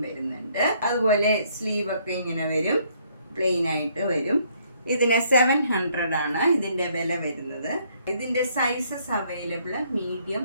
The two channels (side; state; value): both; inverted; correlation -0.67